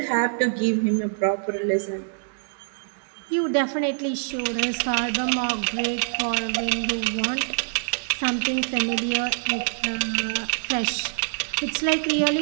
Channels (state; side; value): silent; left; digital silence